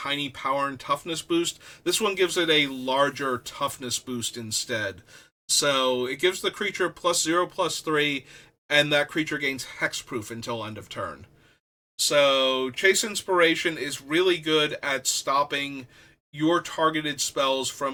power and toughness boost. This one gives it a larger toughness boost instead. So it gives the creature +0/+3, and that creature gains hexproof until end of turn. So Chase Inspiration is really good at stopping your targeted spells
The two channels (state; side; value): identical; both; correlation 1.00